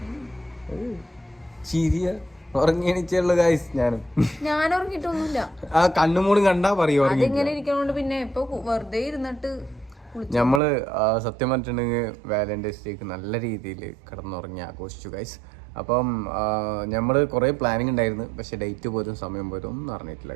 ചിരിയ ഉറങ്ങിയണിച്ചുള്ള ഗൈസ്. ഞാൻ ഉറങ്ങിട്ടൊന്നുമില്ല. ആ കണ്ണുമൂടും കണ്ടാ പറയും ഇങ്ങനെ ഇരിക്കണോണ്ട് പിന്നെ ഇപ്പൊ വെറുതെ ഇരുന്നിട്ട് നമ്മള് സത്യം പറഞ്ഞിട്ടുണ്ടെങ്കിൽ വാലന്റൈൻസ് ഡേക്ക് നല്ല രീതിയിൽ കിടന്നുറങ്ങി ആഘോഷിച്ചു ഗൈസ്. അപ്പം നമ്മള് കുറെ പ്ലാനിങ് ഉണ്ടായിരുന്നു, പക്ഷെ ഡേറ്റ് പോലും സമയം പോലും ഒന്നും അറിഞ്ഞിട്ടില്ല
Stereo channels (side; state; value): left; drops out; at 10.6 s